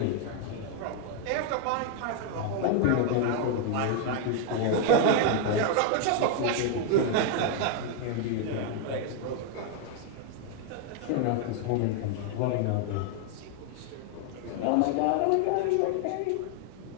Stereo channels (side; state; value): both; different; correlation 0.00